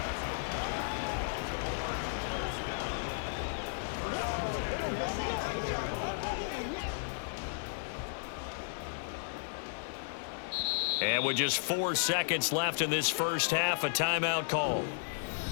And with just 4 seconds left in this first half, a timeout call.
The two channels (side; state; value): right; silent; digital silence